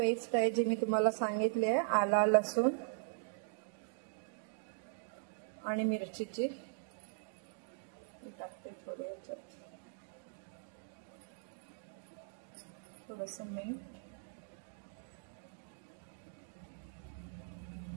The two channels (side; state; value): left; silent; digital silence